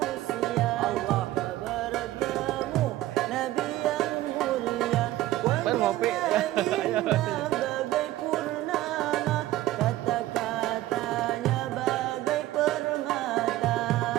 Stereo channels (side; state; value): left; quieter; 15.6 dB